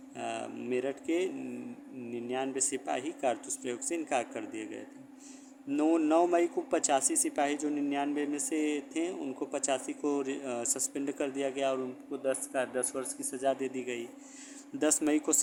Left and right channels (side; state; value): both; identical; correlation 1.00